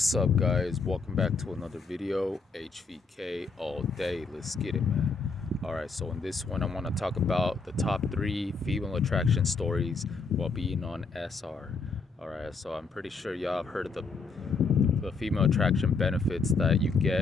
up, guys? Welcome back to another video. HVK all day. Let's get it, man. All right, so in this one, I want to talk about the top 3 female attraction stories while being on SR. All right, so I'm pretty sure y'all have heard of the female attraction benefits that you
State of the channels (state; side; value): quieter; right; 4.4 dB